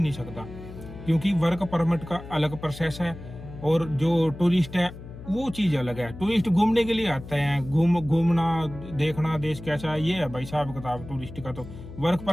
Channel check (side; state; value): left; noise; hum, 14 dB below the sound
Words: सकता। क्योंकि वर्क परमिट का अलग प्रोसेस है और जो टूरिस्ट है वो चीज अलग है। टूरिस्ट घूमने के लिए आते हैं, घूमना देखना देश कैसा है, ये है भाई साहब किताब टूरिस्ट का। तो वर्क